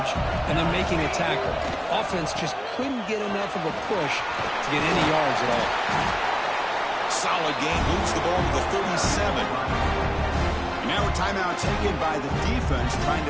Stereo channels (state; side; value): identical; both; correlation 1.00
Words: and then making a tackle. Offense just couldn't get enough of a push to get any yards at all. Solid game, moves the ball to the 37. And now a timeout taken by the defense, trying